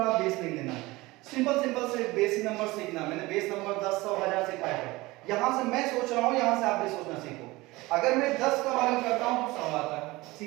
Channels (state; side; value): quieter; left; 20.9 dB